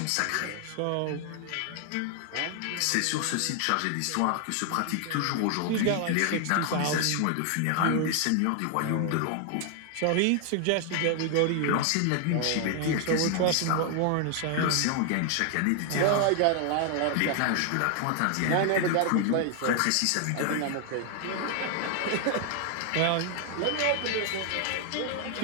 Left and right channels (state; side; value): different; both; correlation 0.00